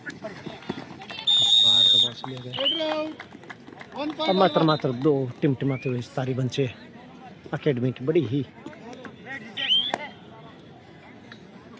अब मात्र 2 टिमटिमाते हुए सारी बंचे अकेडमी की बड़ी ही।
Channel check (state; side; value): identical; both; correlation 1.00